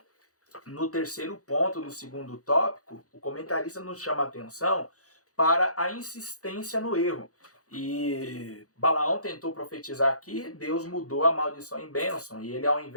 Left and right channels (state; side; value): late; right; 0.66 ms